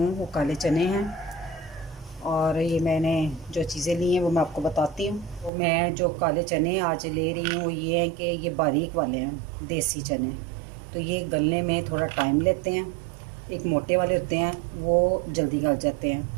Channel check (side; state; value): left; drops out; at 5.5 s